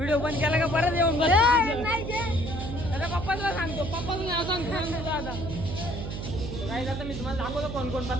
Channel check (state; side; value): noise; right; hum, 6 dB below the sound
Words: बंद केला का परत येऊन त्याच्या पप्पाला सांगतो. पप्पाचं नाव सांगतो आता नाही आता मी तुम्हाला दाखवतो कोण कोण